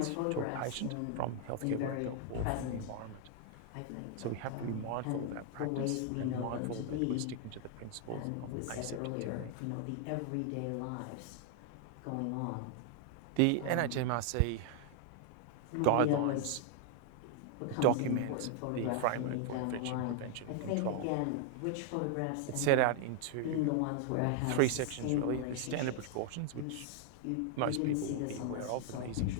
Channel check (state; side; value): different; both; correlation 0.00